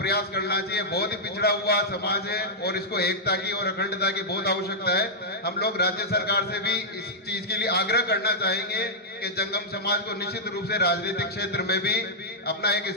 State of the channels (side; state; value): both; normal; correlation -0.09